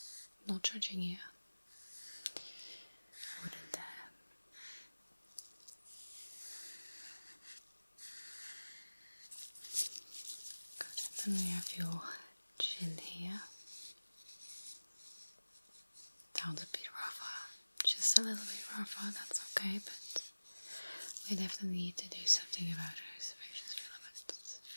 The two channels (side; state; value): both; inverted; correlation -1.00